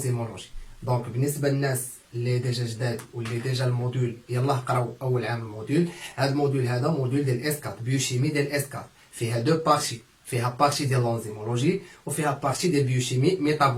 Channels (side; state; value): both; identical; correlation 1.00